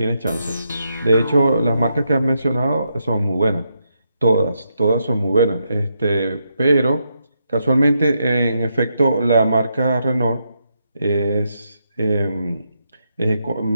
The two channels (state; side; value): inverted; both; correlation -0.81